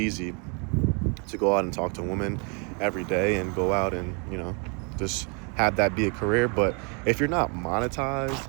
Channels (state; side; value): quieter; left; 35.7 dB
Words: to go out and talk to women every day and go out and, just have that be a career. But if you're not